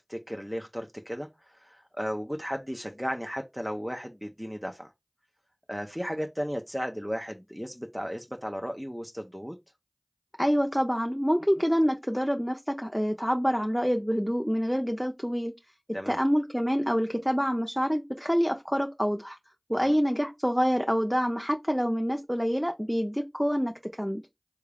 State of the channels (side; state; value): both; identical; correlation 1.00